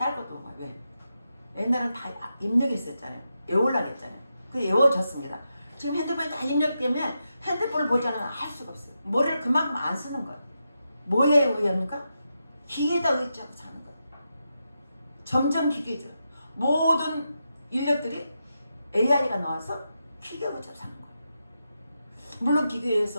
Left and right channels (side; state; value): both; inverted; correlation -0.87